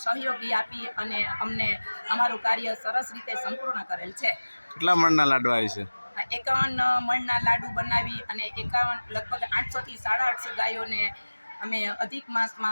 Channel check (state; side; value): inverted; both; correlation -1.00